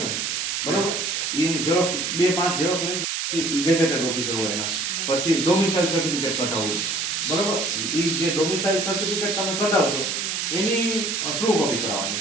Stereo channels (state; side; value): noise; right; hiss, 1 dB below the sound